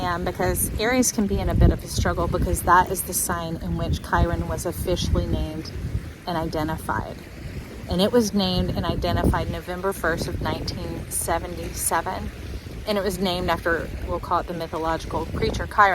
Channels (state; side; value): identical; both; correlation 1.00